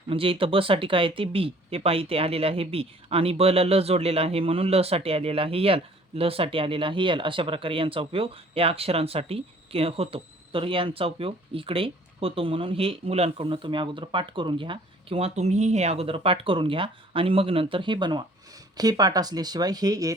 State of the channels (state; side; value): normal; both; correlation 0.54